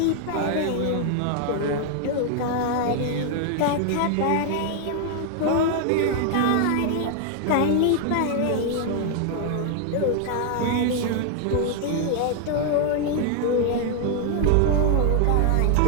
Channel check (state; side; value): different; both; correlation 0.00